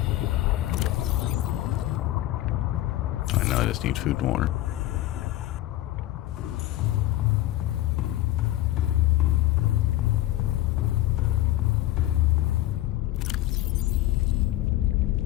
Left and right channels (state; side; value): quieter; right; 15.1 dB